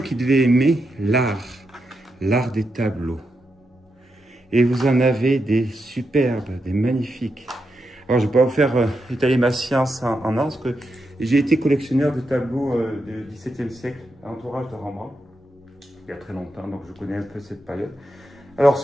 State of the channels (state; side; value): normal; both; correlation 0.85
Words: devait aimer l'art des tableaux. Et vous en avez des superbes, des magnifiques. Alors, je ne vais pas vous faire étaler ma science en or, parce que j'ai été collectionneur de tableaux du XVIIe siècle, entourage de Rembrandt, il y a très longtemps, donc je connais un peu cette période. Alors,